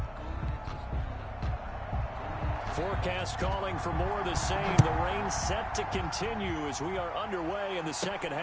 Forecast calling for more of the same. The rain set to continue as we are underway in the second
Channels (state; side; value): identical; both; correlation 1.00